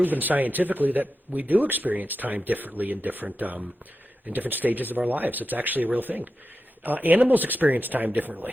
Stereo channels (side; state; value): both; normal; correlation 0.90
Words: scientifically that we do experience time differently in different stages of our lives. It's actually a real thing. Animals experience time